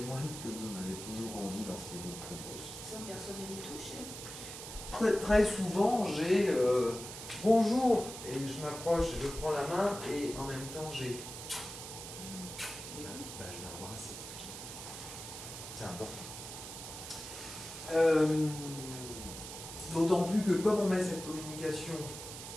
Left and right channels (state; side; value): noise; right; hiss, 10 dB below the sound